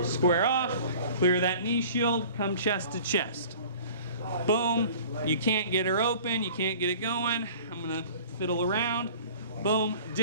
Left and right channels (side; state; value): both; inverted; correlation -0.46